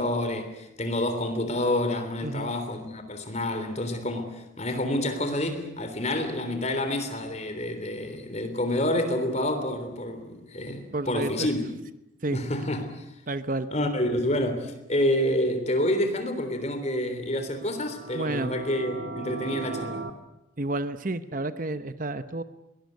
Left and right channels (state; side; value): normal; both; correlation 0.35